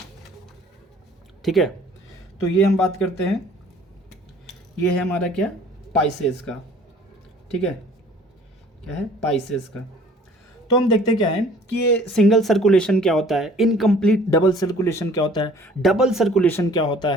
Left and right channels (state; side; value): normal; both; correlation 0.52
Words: ठीक है। तो ये हम बात करते हैं, ये है हमारा क्या, पाइसेस का, ठीक है। क्या है, पाइसेस का। तो हम देखते क्या है कि ये सिंगल सर्कुलेशन क्या होता है, इनकम्प्लीट डबल सर्कुलेशन क्या होता है, डबल सर्कुलेशन क्या होता